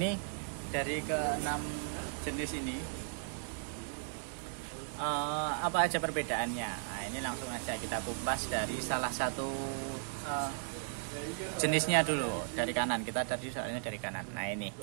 dari ke-6 jenis ini apa aja perbedaannya? Nah ini langsung aja kita kupas dari salah satu jenisnya dulu, dari kanan. Kita tadi soalnya dari kanan. Nah ini,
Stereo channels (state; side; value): silent; left; 54 dB below the other